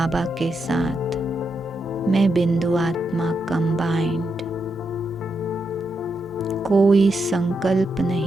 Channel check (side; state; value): both; normal; correlation 0.83